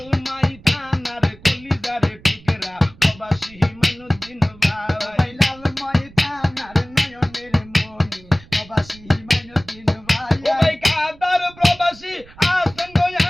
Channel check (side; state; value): right; noise; rumble, 23 dB below the sound